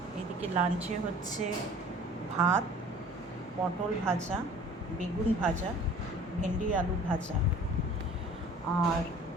এদিকে লাঞ্চে হচ্ছে ভাত, পটল ভাজা, বেগুন ভাজা, ভেন্ডি আলু ভাজা। আর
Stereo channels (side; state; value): both; normal; correlation 0.47